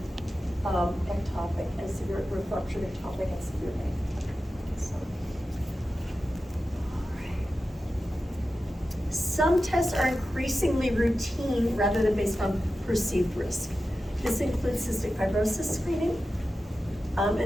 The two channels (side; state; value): both; normal; correlation 0.93